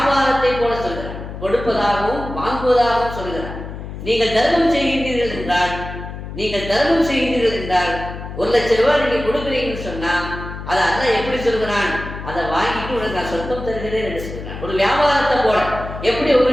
போல சொல்கிறான், கொடுப்பதாகவும் வாங்குவதாகவும் சொல்கிறான். நீங்கள் தர்மம் செய்கின்றீர்கள் என்றால், நீங்கள் தர்மம் செய்கின்றீர்கள் என்றால் 1 லட்சம் ரூபாய் நீங்க கொடுக்குறீங்கன்னு சொன்னா அதை அல்லாஹ் எப்படி சொல்கிறான்? அதை வாங்கிட்டு உனக்கு நான் சொர்க்கம் தருகிறேன் என்று சொல்கிறான். ஒரு வியாபாரத்தை போல எப்படி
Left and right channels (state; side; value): noise; left; hum, 10 dB below the sound